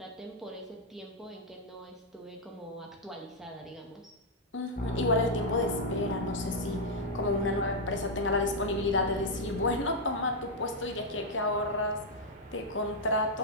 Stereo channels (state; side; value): normal; both; correlation -0.03